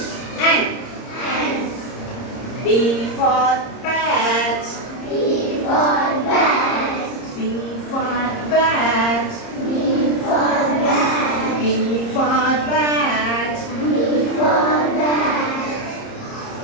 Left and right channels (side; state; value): right; late; 30 ms